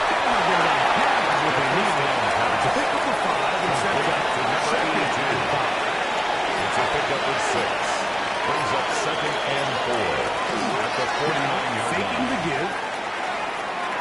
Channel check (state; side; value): identical; both; correlation 1.00